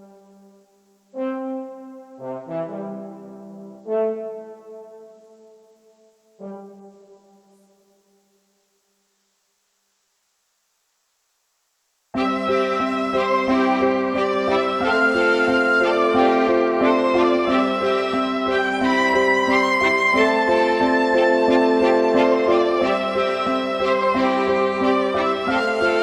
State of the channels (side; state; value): both; identical; correlation 1.00